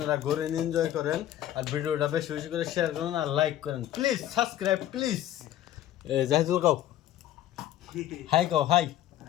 ঘুরেন, এনজয় করেন। আর ভিডিওটা বেশি বেশি করে শেয়ার করেন আর লাইক করেন, প্লিজ সাবস্ক্রাইব প্লিজ। জাহিদুল কাও হাই কাও হাই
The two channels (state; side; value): quieter; right; 12.5 dB